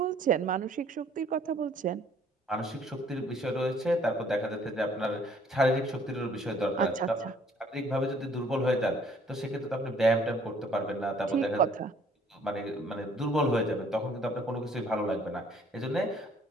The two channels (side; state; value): both; normal; correlation 0.60